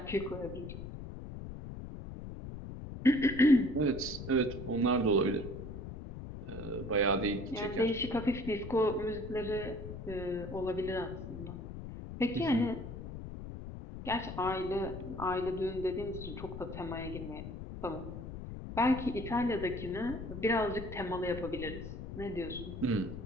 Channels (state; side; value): noise; left; rumble, 9 dB below the sound